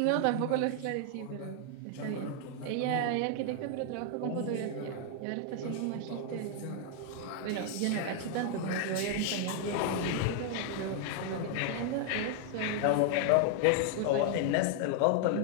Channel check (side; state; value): both; different; correlation 0.00